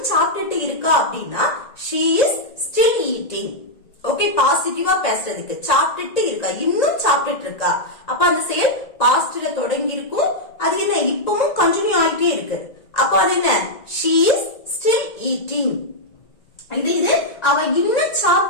சாப்பிட்டுட்டு இருக்கா அப்படின்னா she is still eating. Okay, பாசிட்டிவா பேசுறதுக்கு சாப்பிட்டுட்டு இருக்கா, இன்னும் சாப்பிட்டுட்டு இருக்கா. அப்ப அந்த செயல் பாஸ்ட்ல தொடங்கி இருக்கும், அது என்ன இப்பவும் கண்டினியூ ஆயிட்டே இருக்கு. அப்ப அது என்ன? she is still eating. இது அவ இன்னும்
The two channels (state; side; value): late; right; 1.9 ms